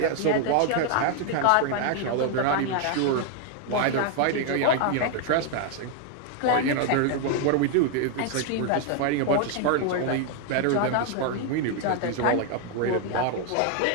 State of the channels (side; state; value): both; different; correlation 0.01